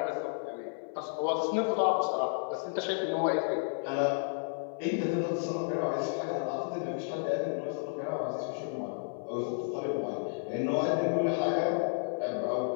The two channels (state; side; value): silent; right; 56 dB below the other